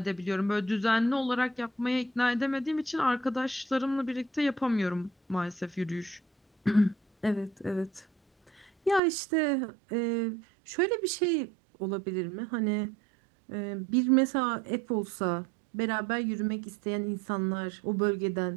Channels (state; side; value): drops out; left; at 9.0 s